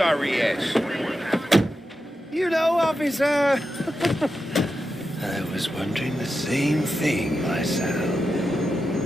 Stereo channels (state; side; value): normal; both; correlation 0.89